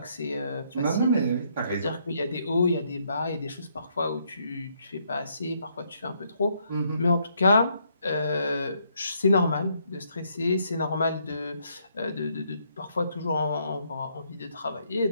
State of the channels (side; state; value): both; inverted; correlation -0.72